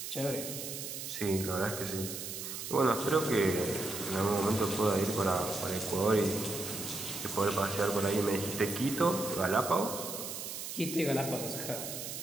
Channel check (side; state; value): right; noise; hiss, 7 dB below the sound